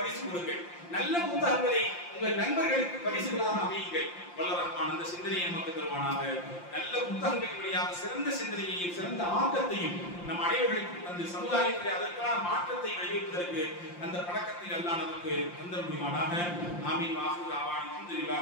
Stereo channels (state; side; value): late; right; 5.7 ms